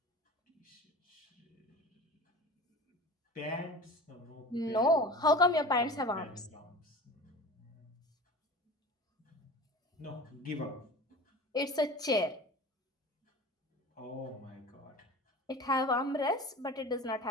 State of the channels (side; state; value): both; normal; correlation 0.36